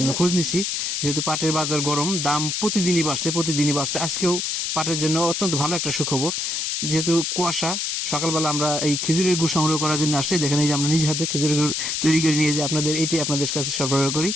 খোঁজ নিছি। যেহেতু পাটের বাজার গরম, দাম প্রতিদিনই বাড়ছে। আজকেও পাটের জন্য অত্যন্ত ভালো একটা সুখবর। যেহেতু কুয়াশা, সকালবেলা আমরা এই খেজুরের গুড় সংগ্রহ করার জন্য আসছি। দেখেন এই যে আমরা নিজ হাতে খেজুরের গুড় তৈরি করে নিয়ে যে আপনাদের কাছে সরবরাহ করি।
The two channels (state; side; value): noise; left; hiss, 1 dB below the sound